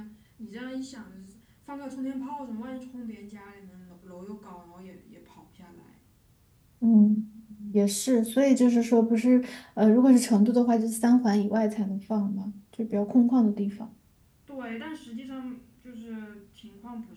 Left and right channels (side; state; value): both; identical; correlation 1.00